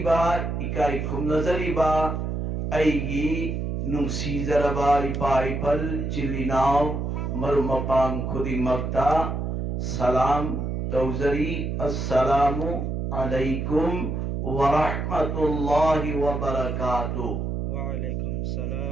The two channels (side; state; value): right; noise; hum, 2 dB below the sound